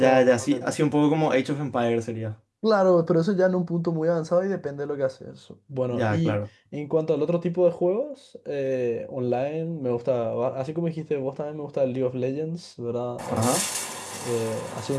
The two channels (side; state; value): both; identical; correlation 1.00